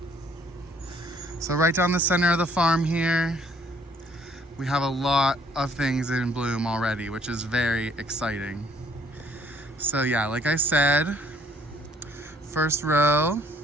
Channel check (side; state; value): both; normal; correlation 0.61